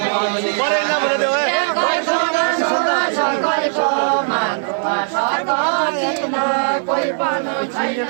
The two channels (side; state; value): left; silent; 56 dB below the other